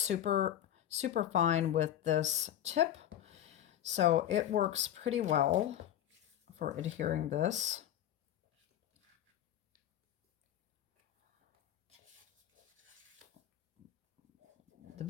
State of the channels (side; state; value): right; quieter; 11.3 dB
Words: fine with this tip. So it works pretty well for adhering this. The